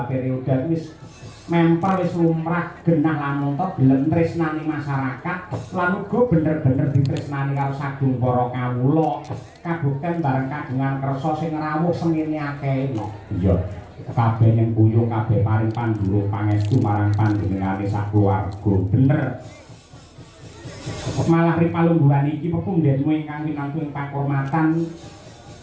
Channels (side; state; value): both; identical; correlation 1.00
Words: periode wis mempel wis lumrah genah lamun to gelem tresnani masyarakat lan uga bener-bener ditresnani karo sagung para kawula kabukten bareng kagungan kersa sing rawuh semene akeh. Iya. Kabeh ning buyung kabeh paring pandhurung pangestu marang panjenengane sakeluarga. Bener. Malah ripalungguhan iki pepundhenmu ingkang winangku ing pakurmatan